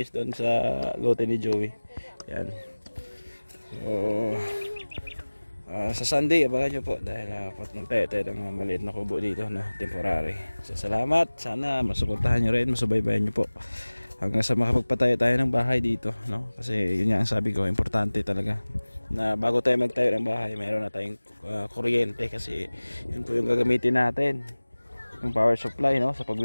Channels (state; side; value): inverted; both; correlation -1.00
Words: doon sa lote ni Joey. Ayan. So sa Sunday, abangan nyo po dahil magtayo tayo ng maliit na kubo dito, no? Temporary. So salamat, sana masuportahan nyo rin, masubaybayan nyo po hanggang sa makapagpatayo tayo ng bahay dito, no? Kasi yun nga ang sabi ko, importante talaga na bago tayo magtayo ng bahay, mayroon na tayong kuryente, kasi yun po yung gagamitin natin, yung power supply, no? Sa